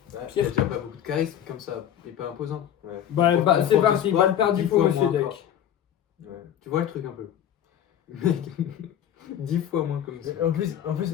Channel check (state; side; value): quieter; right; 10.3 dB